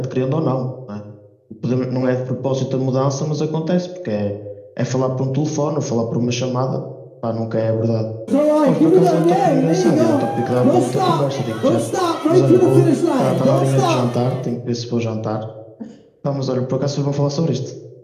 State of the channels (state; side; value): identical; both; correlation 1.00